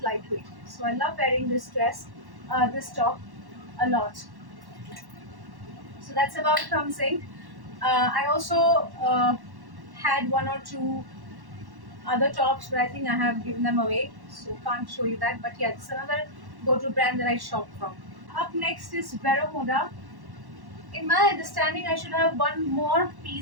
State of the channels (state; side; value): late; left; 1.1 ms